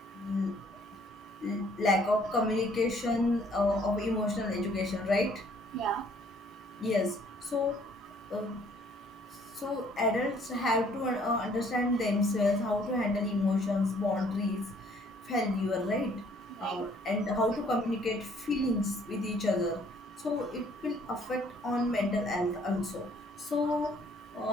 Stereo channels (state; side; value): normal; both; correlation 0.61